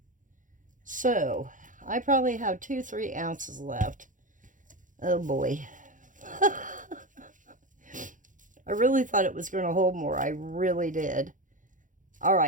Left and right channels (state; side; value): late; left; 0.38 ms